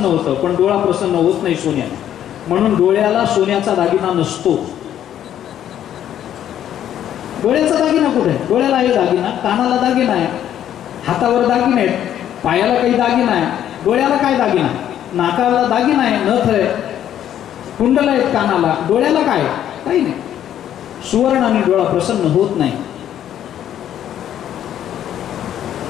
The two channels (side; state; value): right; quieter; 10.7 dB